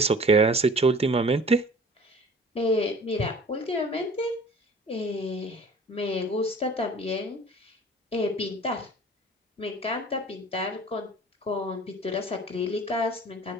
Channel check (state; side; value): normal; both; correlation 0.47